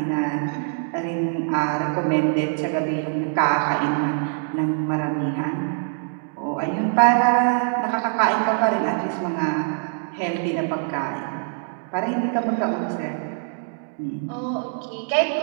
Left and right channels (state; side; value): silent; left; digital silence